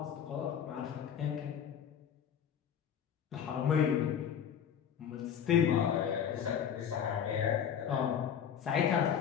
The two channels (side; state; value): right; quieter; 8.5 dB